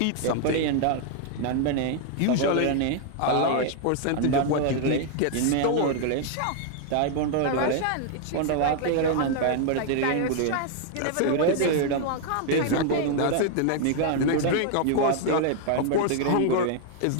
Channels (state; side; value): different; both; correlation 0.00